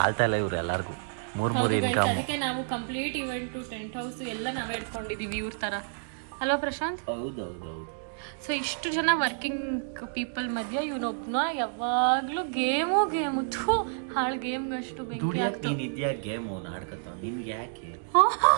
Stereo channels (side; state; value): left; silent; digital silence